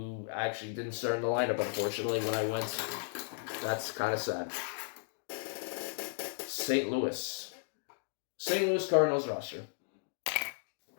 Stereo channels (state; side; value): silent; right; digital silence